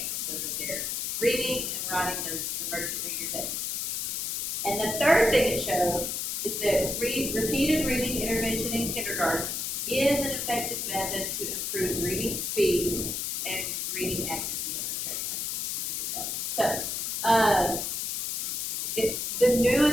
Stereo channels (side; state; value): left; noise; hiss, 2 dB below the sound